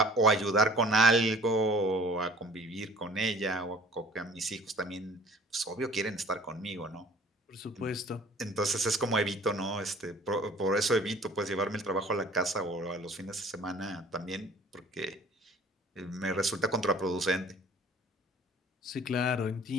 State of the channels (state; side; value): normal; both; correlation 0.50